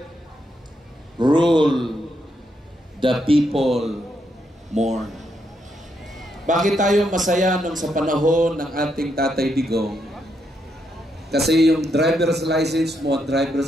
rule, the people mourn. Bakit tayo masaya nung sa panahon ng ating Tatay Digong? Kasi yung driver's license mo at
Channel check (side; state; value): both; normal; correlation 0.79